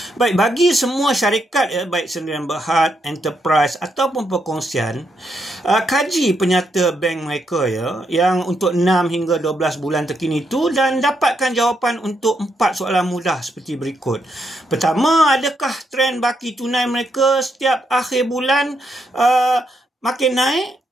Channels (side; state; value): both; normal; correlation 0.79